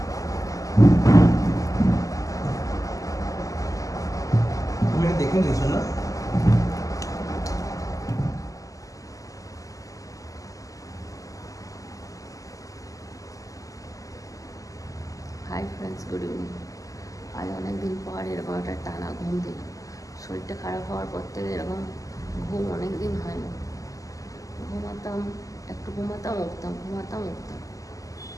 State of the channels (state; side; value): late; right; 0.16 ms